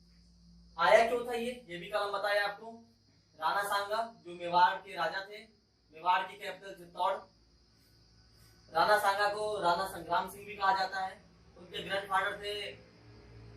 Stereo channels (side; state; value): both; identical; correlation 1.00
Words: आया क्यों था ये भी कल हम बताए आपको। राणा सांगा जो मेवाड़ के राजा थे, मेवाड़ की कैपिटल चित्तौड़। राणा सांगा को राणा संग्राम सिंह भी कहा जाता है। उनके ग्रैंडफादर थे